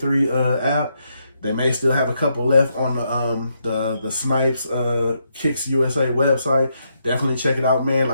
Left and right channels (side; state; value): both; inverted; correlation -0.78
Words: app. They may still have a couple left on the Snipes Kicks USA website. Definitely check it out, man.